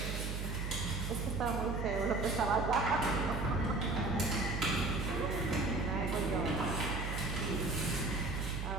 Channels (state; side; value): noise; right; hum, 3 dB below the sound